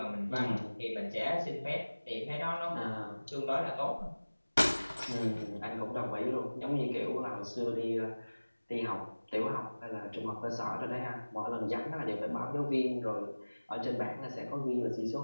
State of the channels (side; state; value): both; inverted; correlation -1.00